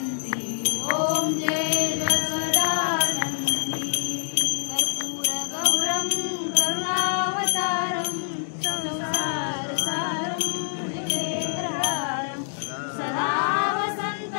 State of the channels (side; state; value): right; silent; digital silence